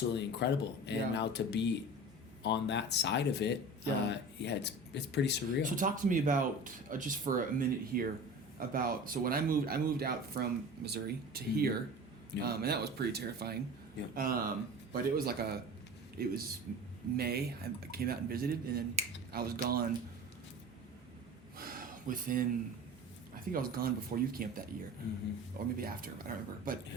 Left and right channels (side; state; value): both; normal; correlation 0.36